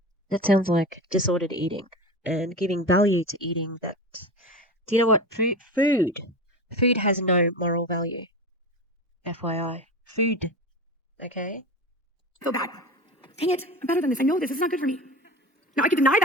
That sounds like disordered eating and giving value to eating that. Do you know what? Food has no moral value. FYI. Food. Okay? I feel bad. Dang it, I'm better than this. I know this. This is not good for me. Now, I could deny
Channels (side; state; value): both; normal; correlation 0.28